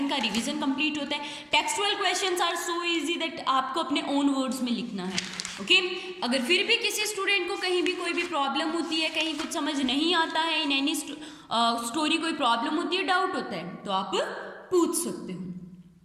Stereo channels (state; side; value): identical; both; correlation 1.00